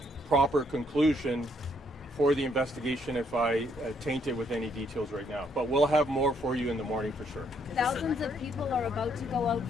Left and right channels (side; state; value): both; normal; correlation 0.70